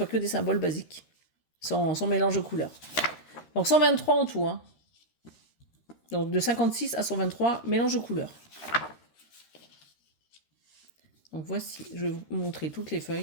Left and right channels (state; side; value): late; right; 13 ms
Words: que des symboles basiques, sans mélange de couleurs. Donc 123 en tout. Hein. Donc de 56 à 123, mélange de couleurs. Donc voici, je vais vous montrer toutes les